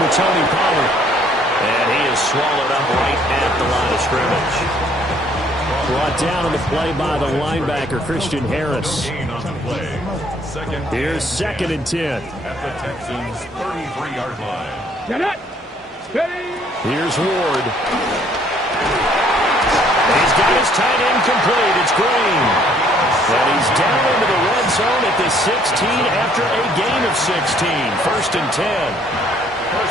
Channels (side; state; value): both; normal; correlation 0.62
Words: with Tony Pollard. And he is swallowed up right at the line of scrimmage. Brought down on the play by the linebacker, Christian Harris. Here's 2nd and 10. At the Texans' 33-yard line. Get it. Steady. Here's Ward. He's got his tight end complete. It's Green. And he's down into the red zone at the 16 after a gain of 16. 1st and 10.